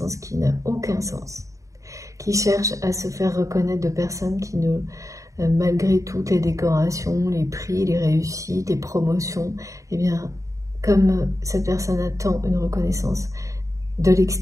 qui n'a aucun sens, qui cherche à se faire reconnaître de personnes qui ne... malgré toutes les décorations, les prix, les réussites, les promotions, eh bien, comme cette personne attend une reconnaissance de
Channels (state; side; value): late; left; 0.16 ms